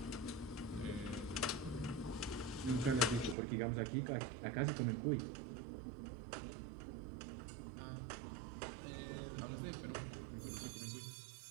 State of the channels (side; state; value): left; drops out; at 3.4 s